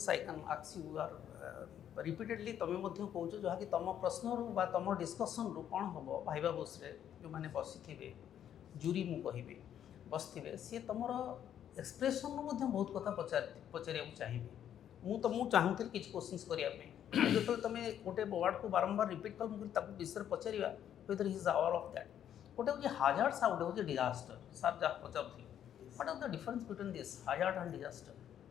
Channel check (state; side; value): quieter; right; 10.0 dB